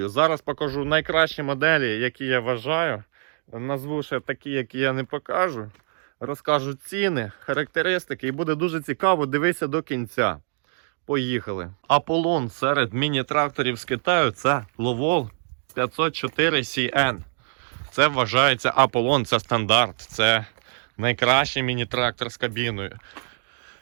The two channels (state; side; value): silent; left; digital silence